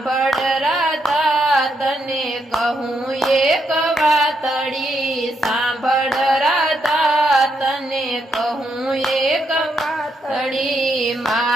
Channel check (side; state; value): both; normal; correlation 0.79